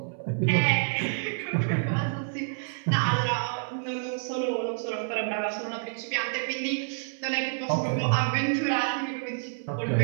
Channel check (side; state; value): left; silent; 58 dB below the other